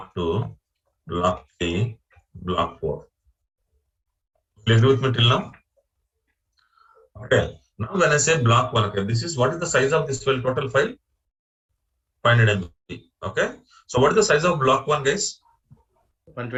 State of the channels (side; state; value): both; identical; correlation 1.00